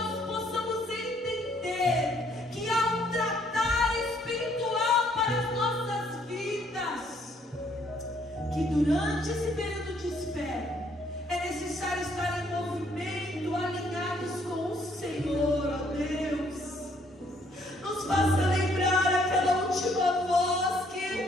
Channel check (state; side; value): normal; both; correlation 0.66